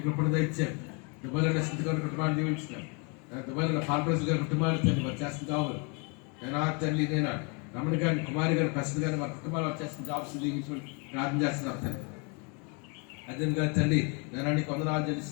కృపణ ఇచ్చాను దుబాయ్లో స్థితి గారి కుటుంబాన్ని దీవించినాను దుబాయ్లో ఫార్మర్స్ గారి కుటుంబాలు తండ్రి వారు చేస్తున్న కావాలి నేను తండ్రి నేను రమణ గారిని కుమారి గారిని ప్రసిద్ధి గారిని వారి కుటుంబాలు వారు చేస్తున్న జాబ్స్ దీవించమని ప్రార్థన చేస్తున్నాను తండ్రి అదేవిధంగా తండ్రి నేను నీకు వందనాలు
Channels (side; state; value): right; quieter; 34.0 dB